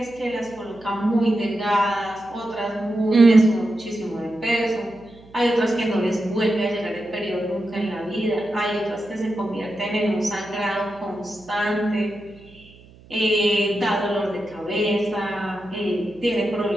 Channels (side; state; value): right; noise; hum, 24 dB below the sound